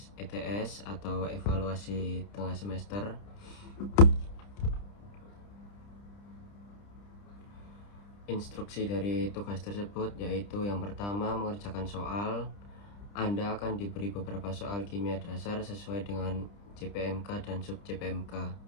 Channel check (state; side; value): late; right; 30 ms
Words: ETS atau evaluasi tengah semester. Instruksi dari tugas tersebut yaitu yang pertama, mengerjakan soal. Anda akan diberi beberapa soal kimia dasar sesuai dengan JPMK dan sub JPMK.